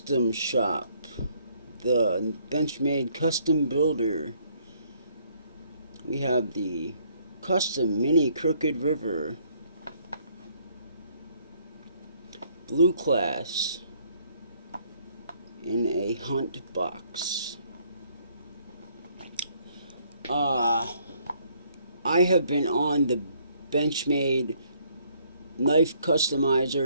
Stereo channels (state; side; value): inverted; both; correlation -0.66